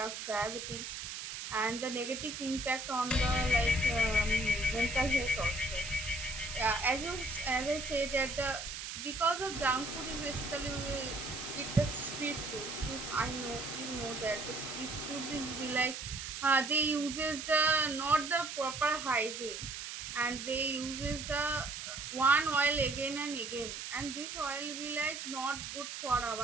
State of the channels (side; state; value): right; noise; hiss, 7 dB below the sound